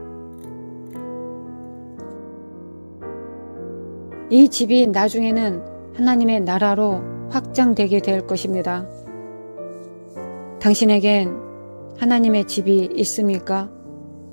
이 집이 나중에는 하나님의 나라로 확장되게 될 것입니다. 당신에겐 하나님의 집이 있습니까?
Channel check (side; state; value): both; inverted; correlation -1.00